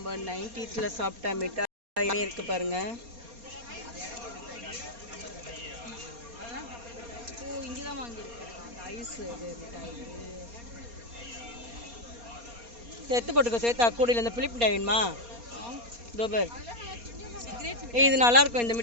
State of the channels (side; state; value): left; late; 4.2 ms